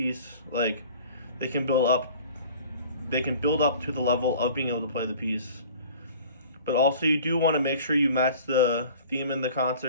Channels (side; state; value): both; inverted; correlation -0.46